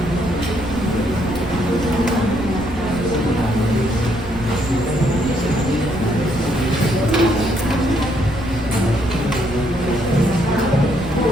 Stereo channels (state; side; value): noise; right; rumble, 12 dB below the sound